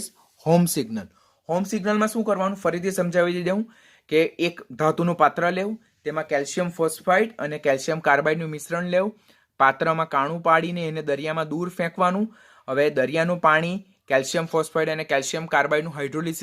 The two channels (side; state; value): both; identical; correlation 1.00